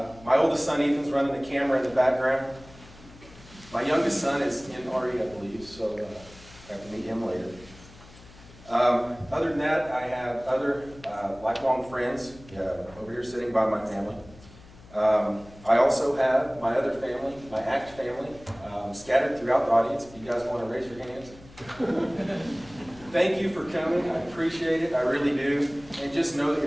My oldest son Ethan's running the camera in the background. My youngest son is in RE, I believe, so I have to meet him later. Other than that, I have other lifelong friends over here sitting by my family. I also have my other family, my ACT family, scattered throughout the audience. If you guys want to raise your hands. Thank you for coming. I appreciate it. I really do. And just know that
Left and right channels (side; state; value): left; noise; hum, 22 dB below the sound